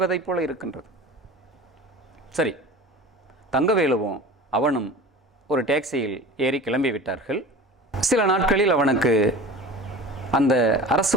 போல இருக்கின்றது. சரி, தங்கவேலுவும் அவனும் ஒரு டாக்ஸியில் ஏறி கிளம்பி விட்டார்கள். சில நாட்களில் அவனுக்கு அந்த அரசு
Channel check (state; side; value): normal; both; correlation 0.37